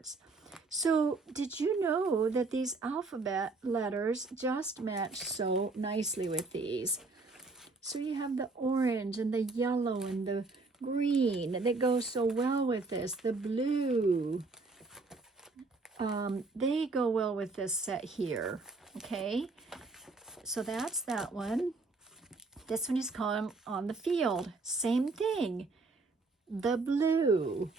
So did you know that these alphabet letters just match so nicely with these? So you have the orange and the yellow and the green that goes so well with this. The blue, they go well with this set here. Okay, so that's that one. This one is called On the Field. Same thing. The blue,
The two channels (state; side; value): quieter; left; 3.8 dB